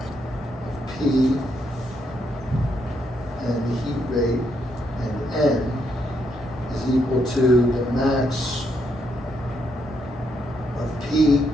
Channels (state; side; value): normal; both; correlation 0.77